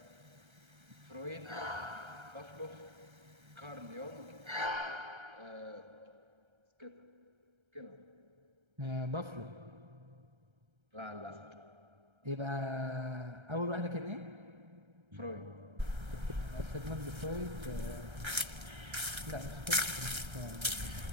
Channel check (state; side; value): late; left; 1.3 ms